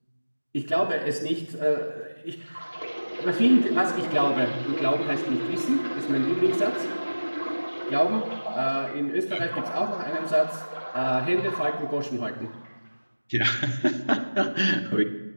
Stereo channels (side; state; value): both; inverted; correlation -1.00